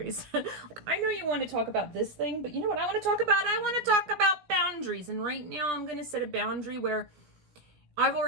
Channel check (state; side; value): late; left; 17 ms